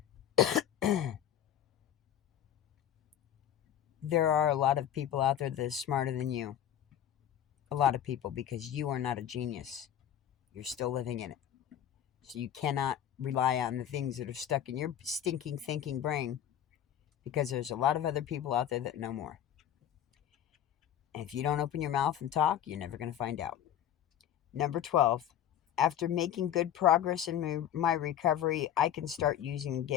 There are a lot of people out there that are smarter than you. A lot of people, because you are not a genius. You're still living in it. So you cannot rely on the things that are stuck in your stinking thinking brain, because there's a lot of other people out there that know more. And if you don't open your mouth and talk, you're never going to find out. Number 12. After making good progress in my recovery, I can start using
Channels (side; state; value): right; quieter; 10.5 dB